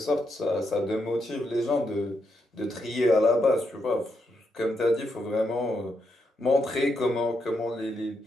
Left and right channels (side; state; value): both; normal; correlation 0.81